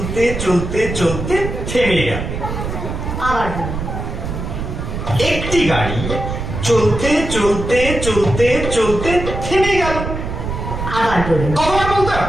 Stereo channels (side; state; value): right; noise; rumble, 5 dB below the sound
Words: চলতে চলতে থেমে গেল। আবার বলুন। একটি গাড়ি চলতে চলতে চলতে চলতে থেমে গেল। আবার বলুন। কতবার বলতে